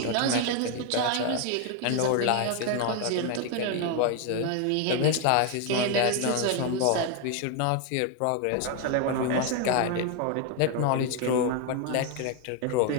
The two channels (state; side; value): different; both; correlation 0.01